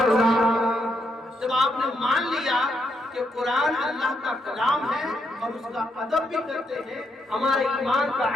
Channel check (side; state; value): both; normal; correlation 0.78